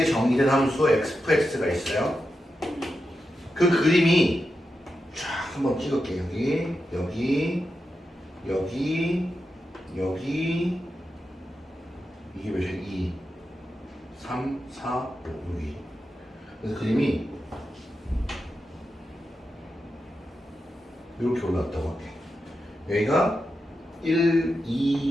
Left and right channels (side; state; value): both; normal; correlation 0.89